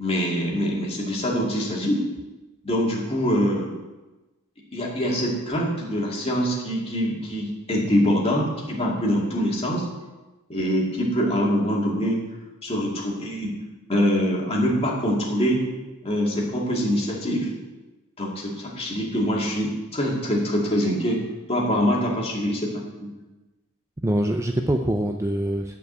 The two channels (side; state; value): both; normal; correlation 0.63